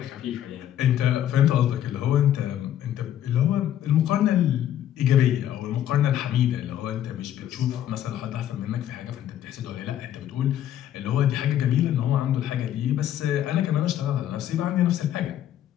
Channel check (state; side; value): quieter; right; 11.3 dB